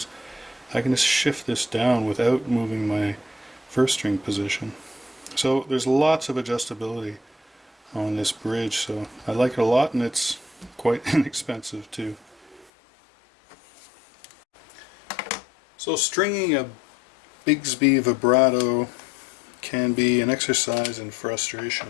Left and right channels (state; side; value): drops out; right; at 12.7 s